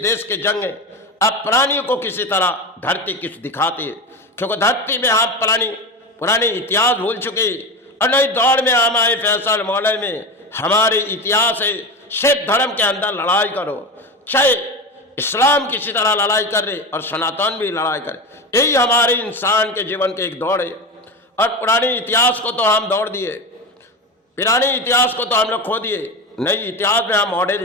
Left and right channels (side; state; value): both; normal; correlation 0.23